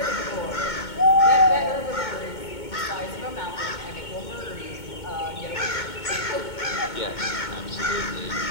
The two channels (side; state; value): right; late; 2.2 ms